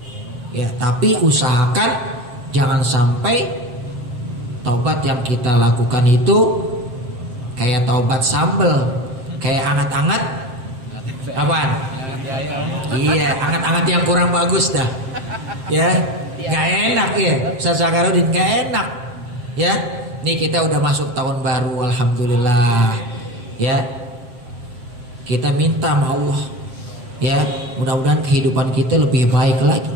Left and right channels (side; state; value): left; late; 7.6 ms